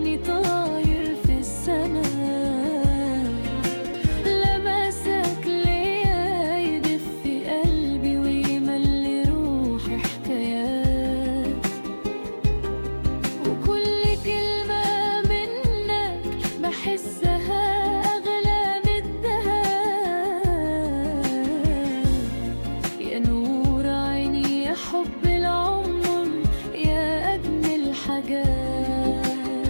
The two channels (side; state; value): both; inverted; correlation -1.00